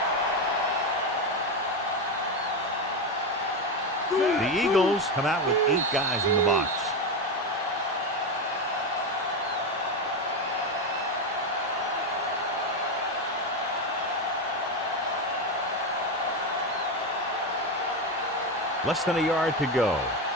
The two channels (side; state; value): both; normal; correlation 0.13